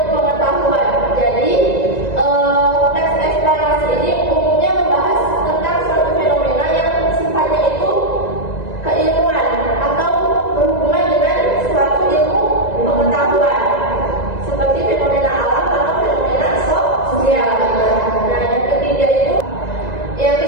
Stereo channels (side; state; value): right; late; 1.9 ms